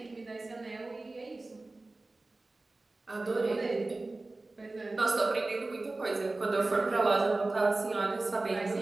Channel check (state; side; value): quieter; left; 3.1 dB